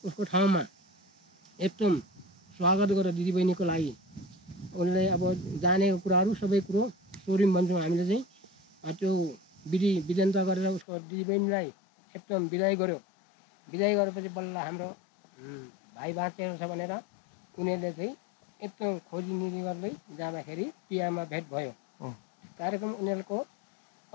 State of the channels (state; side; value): drops out; right; at 10.9 s